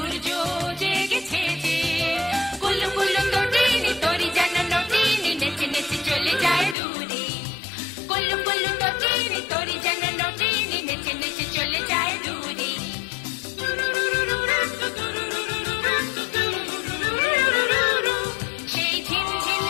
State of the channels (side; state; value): right; drops out; at 6.8 s